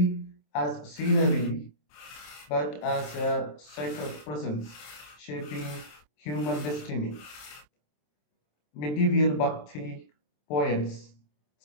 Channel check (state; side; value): late; right; 27 ms